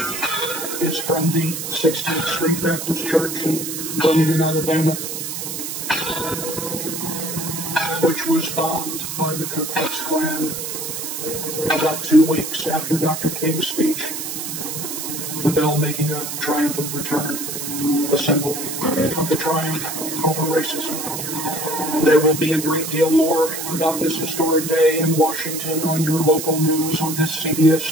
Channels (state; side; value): noise; right; hiss, 5 dB below the sound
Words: is from the 16th Street Baptist Church in Birmingham, Alabama, which was bombed by the Ku Klux Klan about 2 weeks after Dr. King's speech. The bell making a triumphant return, a symbol of the triumph over racism. There will be a great deal more about this historic day in Washington on your local news on this CBS